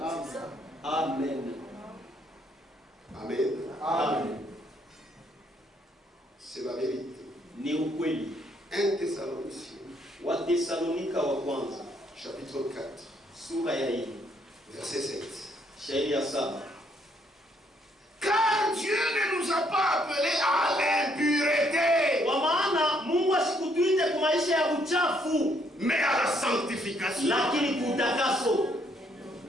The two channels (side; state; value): both; normal; correlation 0.70